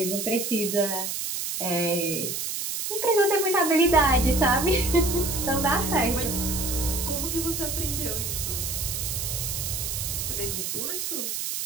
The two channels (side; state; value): right; noise; hiss, 3 dB below the sound